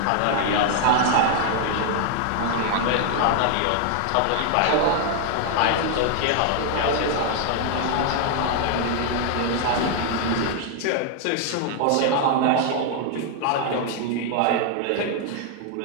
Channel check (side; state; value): both; different; correlation 0.00